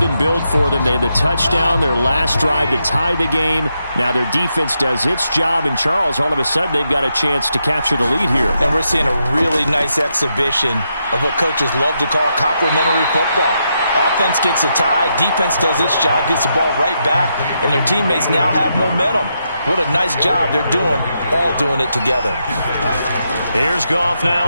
and build for them. They had the touchdown, their last drive to tie the game. Now their defense does its job, and Charles, all of a sudden, they've got a chance to capture the lead here. And we're seeing a really nice exhibition of what coaches love to call complementary football. Offense gets a tie, defense does its job, gets the ball right back, and their teammates now have momentum. What a nice job they're doing, all doing it together. Here's Goff now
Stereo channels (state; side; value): inverted; both; correlation -0.82